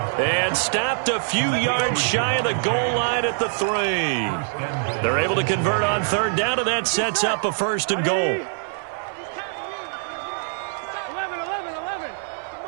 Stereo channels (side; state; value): left; silent; 63 dB below the other